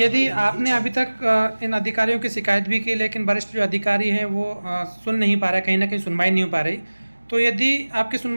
आपने अभी तक इन अधिकारियों की शिकायत भी की, लेकिन वरिष्ठ जो अधिकारी हैं वो सुन नहीं पा रहे, कहीं ना कहीं सुनवाई नहीं हो पा रही, तो यदि आपकी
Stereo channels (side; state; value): both; inverted; correlation -1.00